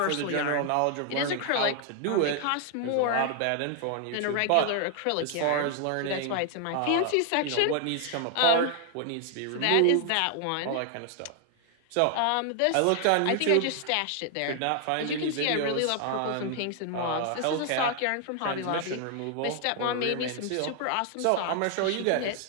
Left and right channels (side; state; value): both; different; correlation 0.00